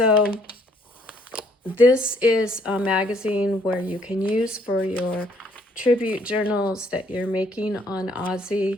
this is a magazine where you can use for your tribute journals that you're making on Ozzy,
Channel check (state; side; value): normal; both; correlation 0.65